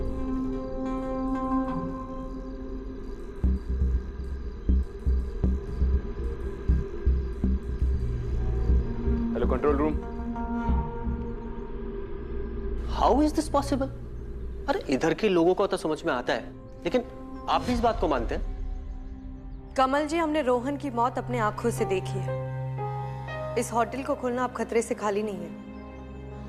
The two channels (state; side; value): identical; both; correlation 1.00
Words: Hello control room. How is this possible? अरे इधर के लोगों को तो समझ में आता है, लेकिन आप भी इस बात को मानते हैं? कमल जी, हमने रोहन की मौत अपने आंखों से देखी है। इस होटल को खोलना अब खतरे से खाली नहीं है।